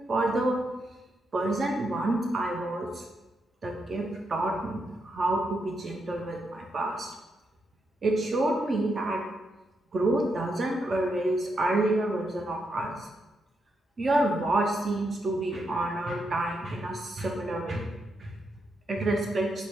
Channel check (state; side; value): normal; both; correlation 0.82